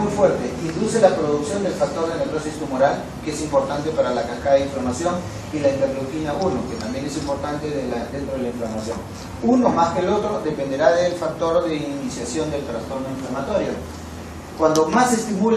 fuerte, induce la producción del factor de necrosis tumoral, que es importante para la cascada de inflamación, y la interleuquina 1, que también es importante dentro de la inflamación. Uno más que el otro dependerá del factor de iniciación del trastorno inflamatorio. Cuando más se estimule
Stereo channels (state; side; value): identical; both; correlation 1.00